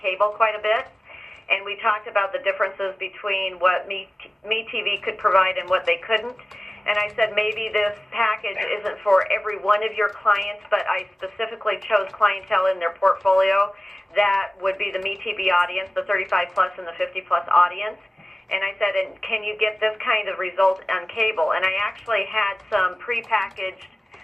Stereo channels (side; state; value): both; normal; correlation 0.97